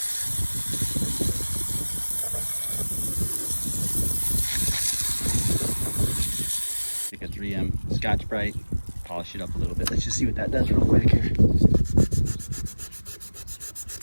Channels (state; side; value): inverted; both; correlation -1.00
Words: Take a 3M Scotch-Brite, polish it up a little bit. Let's just see what that does real quick here.